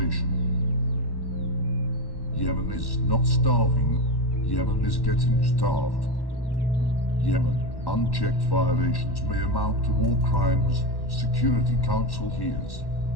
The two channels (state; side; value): late; right; 1.1 ms